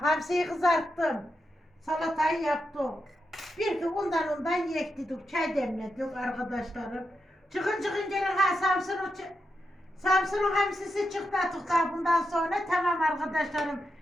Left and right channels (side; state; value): both; normal; correlation 0.86